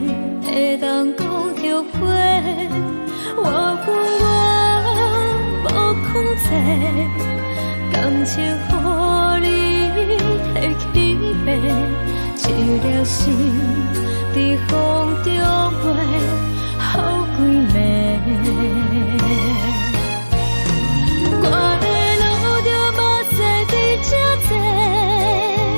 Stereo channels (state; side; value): inverted; both; correlation -1.00